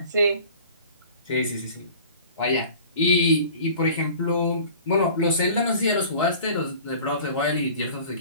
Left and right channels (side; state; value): both; inverted; correlation -0.45